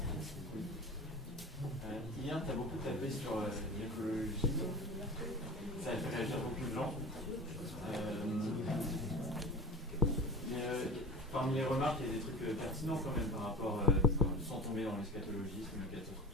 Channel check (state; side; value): normal; both; correlation 0.36